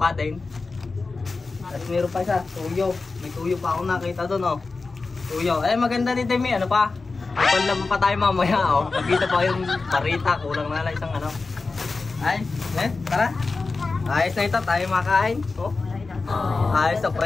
din. At meron pa isa, tuyo. May tuyo pa ako nakita doon, oh. Tuyo. Maganda din, Demi. Ano pa? Panlaban pa tayo mamaya, oh. Pagkita pa yung parita. Kulang na lang isang tara. Ayos na ito, tayo makain. Oh. Ayos na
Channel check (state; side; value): quieter; right; 3.9 dB